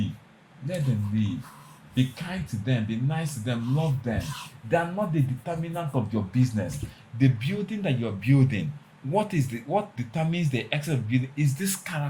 let them leave. Be kind to them. Be nice to them. Love them. They are not the determinant of your business. The building that you're building, what determines the excellence of building is this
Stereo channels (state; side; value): identical; both; correlation 1.00